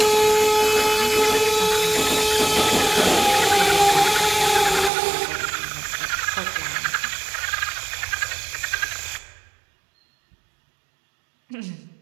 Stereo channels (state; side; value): drops out; left; at 4.9 s